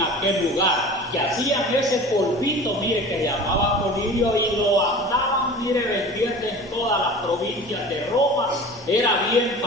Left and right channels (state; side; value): normal; both; correlation 0.39